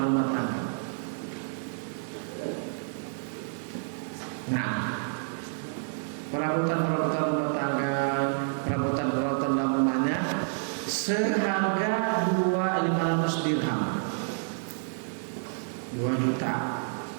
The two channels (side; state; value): left; silent; digital silence